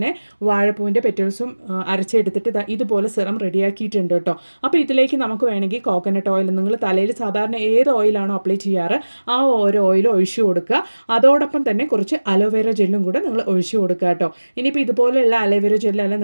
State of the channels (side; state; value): both; inverted; correlation -1.00